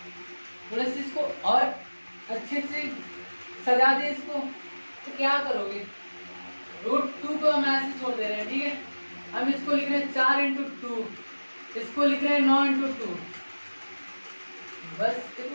थोड़ा सा इसको और अच्छे से सजा दे इसको, तो क्या करोगे, √2 को हम ऐसे छोड़ दे रहे हैं, ठीक है। हम इसको लिख रहे हैं 4 × 2, इसको लिख रहे हैं 9 × 2। बस देखो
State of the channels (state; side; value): inverted; both; correlation -1.00